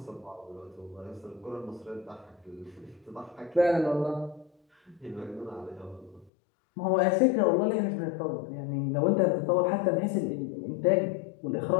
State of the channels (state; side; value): drops out; right; at 6.3 s